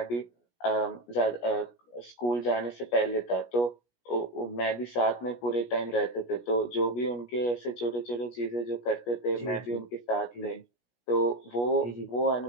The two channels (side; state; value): right; late; 17 ms